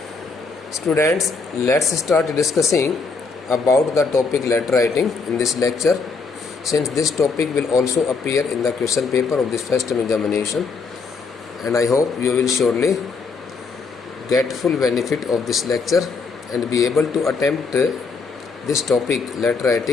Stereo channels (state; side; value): quieter; right; 4.6 dB